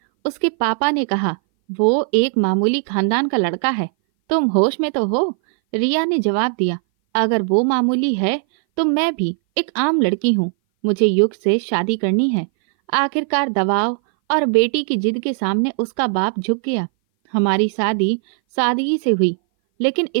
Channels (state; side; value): silent; left; 59 dB below the other